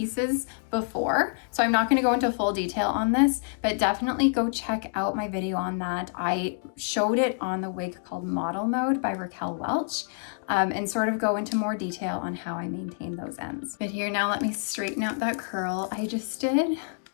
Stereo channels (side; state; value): right; silent; digital silence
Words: before, so I'm not gonna go into full detail on this, but definitely go check out my video on that. I showed it on the wig called Model Mode by Raquel Welch, and sort of go into more detail on how I maintain those ends. But here, now let me straighten out that curl I just did,